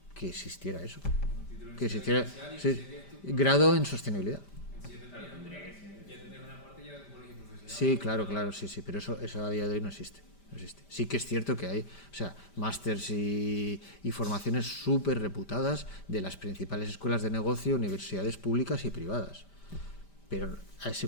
Que existiera eso. Que existiera grado en sostenibilidad. Sí, claro, sí, pero eso a día de hoy no existe. Sí que es cierto que hay, o sea, másters y formaciones súper reputadas de las principales escuelas de negocio, universidades públicas y privadas. Pero a ese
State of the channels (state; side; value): late; right; 5.1 ms